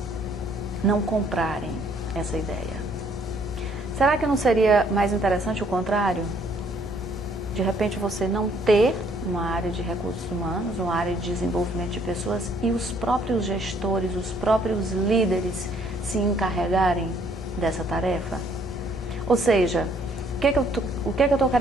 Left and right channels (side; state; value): both; normal; correlation 0.64